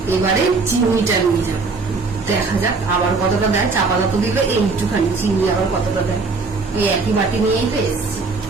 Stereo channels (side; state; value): left; quieter; 4.1 dB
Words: এবারে চিনিটা নিয়ে যাবো, দেখা যাক আবার কতটা দেয়। চা পাতা তো দিলে এইটুখানি, চিনি আবার কতটা দেয়। এই একই বাটি নিয়েই তো এসছি।